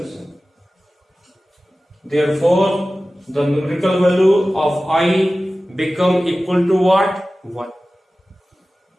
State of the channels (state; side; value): normal; both; correlation 0.96